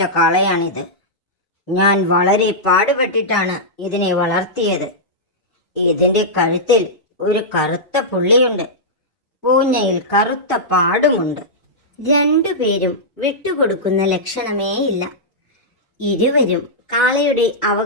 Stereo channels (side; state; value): both; normal; correlation -0.11